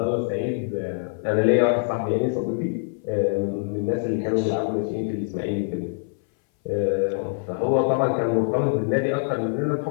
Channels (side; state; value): right; silent; 60 dB below the other